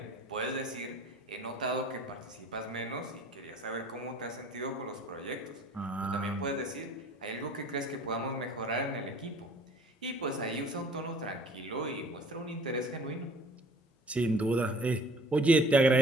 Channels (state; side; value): normal; both; correlation 0.51